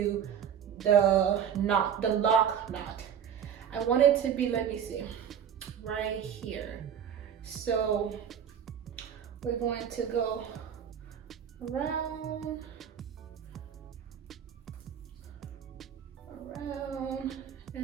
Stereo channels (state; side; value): quieter; left; 8.5 dB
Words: the lock knot. I want it to be, let me see, right here. So we're going to go around,